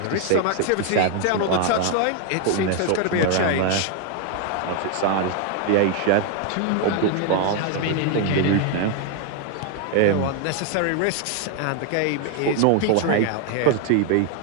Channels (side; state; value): both; different; correlation 0.00